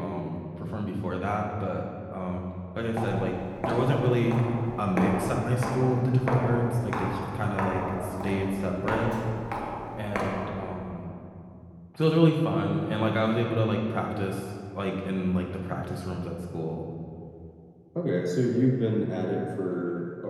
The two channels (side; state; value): both; identical; correlation 1.00